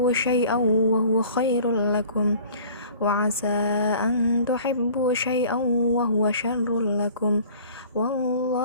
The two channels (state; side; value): inverted; both; correlation -0.48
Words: syai'an wa huwa khairul lakum wa asa an tuhibbu syai'an wa huwa syarrul lakum